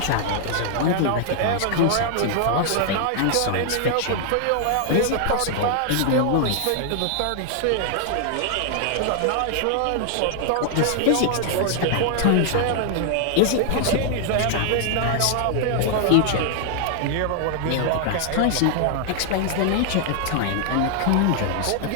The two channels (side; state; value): both; different; correlation 0.00